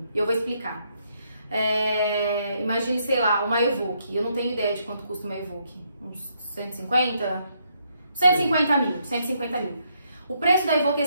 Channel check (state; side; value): inverted; both; correlation -0.74